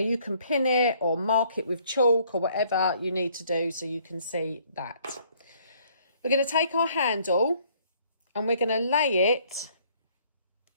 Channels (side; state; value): both; inverted; correlation -0.63